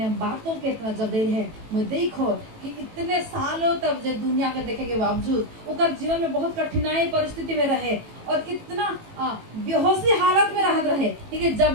बातों के इतना जब दे रहे मैं देखो कि इतने सालों तक जब दुनिया के देखे के बावजूद उनका जीवन में बहुत कठिनाई परिस्थिति में रहे और इतना बेहोशी हालत में रहत रहे लेकिन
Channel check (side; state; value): left; late; 18 ms